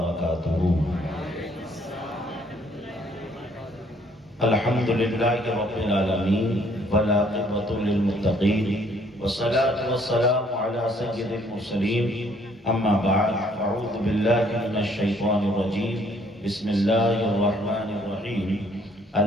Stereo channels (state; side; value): normal; both; correlation 0.64